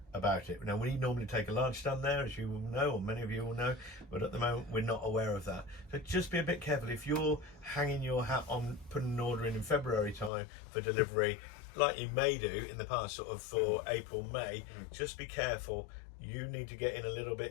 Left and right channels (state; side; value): drops out; right; at 10.3 s